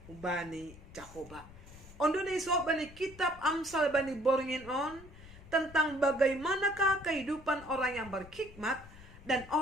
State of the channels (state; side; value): noise; left; rumble, 19 dB below the sound